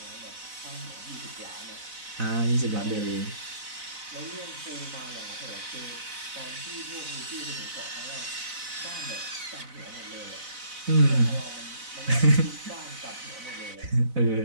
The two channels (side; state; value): left; late; 4.0 ms